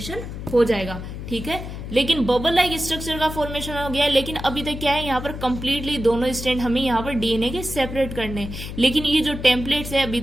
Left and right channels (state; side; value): noise; left; hum, 8 dB below the sound